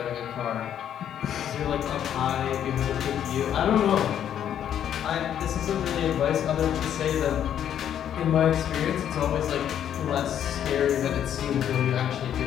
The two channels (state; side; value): quieter; right; 9.8 dB